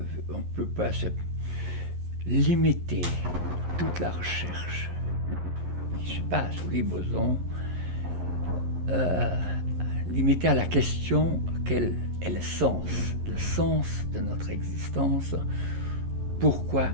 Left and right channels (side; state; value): left; late; 11 ms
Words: ne peut pas se limiter toute la recherche qui se passe sous les bosons, limiter à la question quel est le sens de notre existence, pourquoi